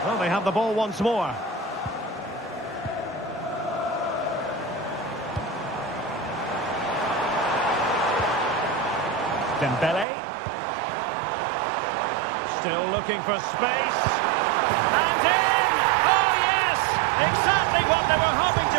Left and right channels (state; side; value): drops out; left; at 10.1 s